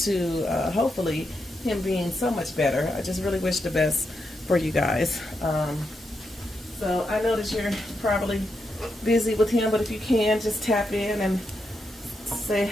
hopefully him being so much better. I just really wish the best for you guys. So I know that you're probably busy with him, but if you can, just tap in and say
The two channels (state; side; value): normal; both; correlation 0.84